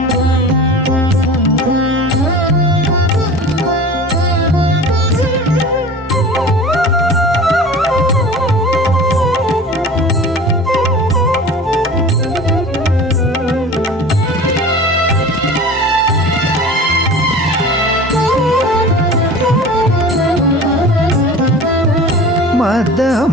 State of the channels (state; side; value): normal; both; correlation 0.38